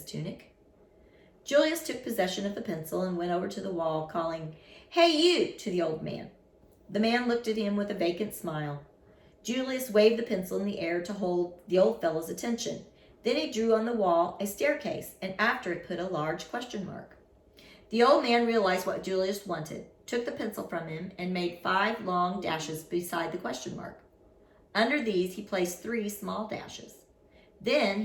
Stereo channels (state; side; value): identical; both; correlation 1.00